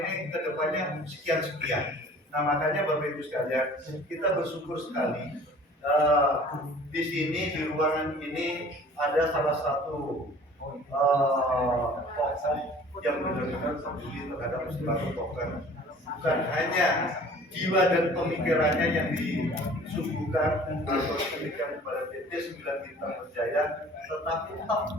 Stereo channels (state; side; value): normal; both; correlation 0.48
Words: ini kedepannya sekian-sekian. Nah makanya Bapak Ibu sekalian, kita bersyukur sekali di sini di ruangan ini ada salah satu tokoh yang benar-benar peduli terhadap istilah token. Bukan hanya jiwa dan pemikirannya yang disuguhkan atau diberikan kepada PT 9 Bintang Berjaya, tetapi